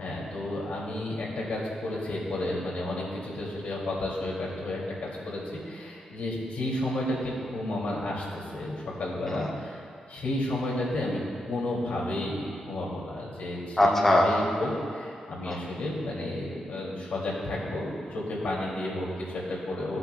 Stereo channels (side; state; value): both; normal; correlation 0.83